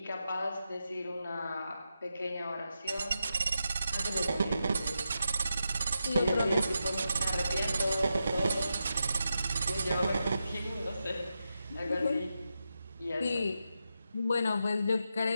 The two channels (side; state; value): both; inverted; correlation -0.87